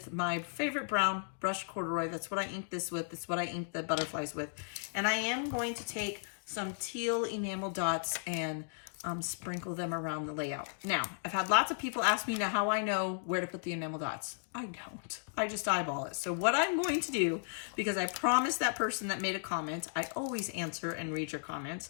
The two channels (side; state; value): right; silent; digital silence